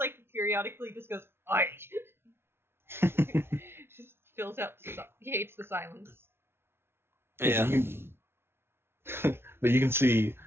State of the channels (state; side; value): late; left; 0.12 ms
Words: periodically just goes, "Aye." Just fills out, he hates the silence. Yeah. But you can see,